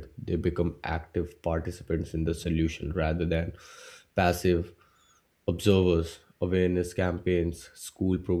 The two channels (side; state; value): both; identical; correlation 1.00